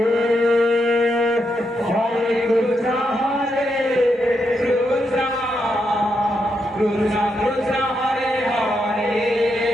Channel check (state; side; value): normal; both; correlation 0.82